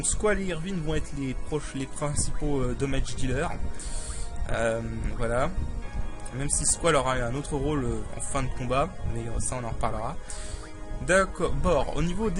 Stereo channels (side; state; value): both; identical; correlation 1.00